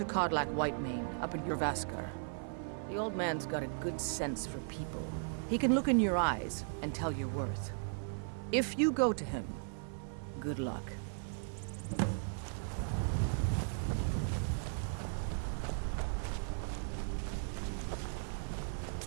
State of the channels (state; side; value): silent; left; 53 dB below the other